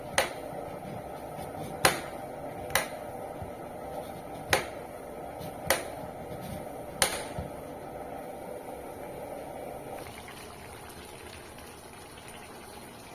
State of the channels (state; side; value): identical; both; correlation 1.00